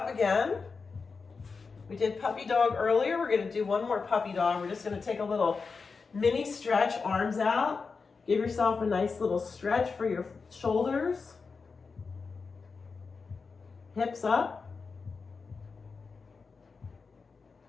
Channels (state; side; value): quieter; right; 4.8 dB